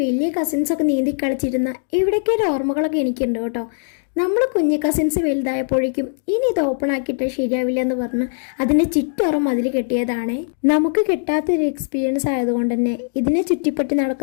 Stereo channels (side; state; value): right; silent; digital silence